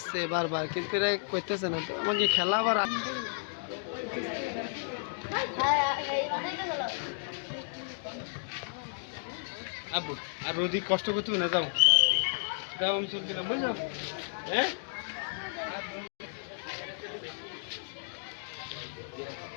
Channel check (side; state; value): right; silent; digital silence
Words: বারবার, কিন্তু এরা করতেছে না তো। আমাকে খেলা আবার আর রোদি কষ্ট করতে না, যাও যাও, আমি চলছি না, বুঝলাম। হ্যাঁ,